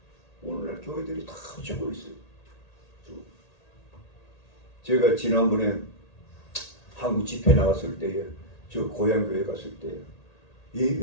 오늘날 교회들이 다 죽고 있어요. 제가 지난번에 한국 집회 나갔을 때에 저 고향 교회 갔을 때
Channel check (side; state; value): right; late; 1.8 ms